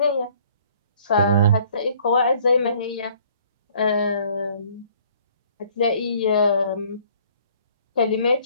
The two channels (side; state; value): both; inverted; correlation -0.58